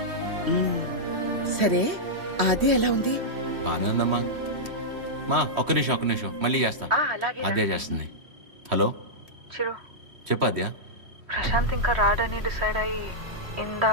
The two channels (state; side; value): late; left; 3.1 ms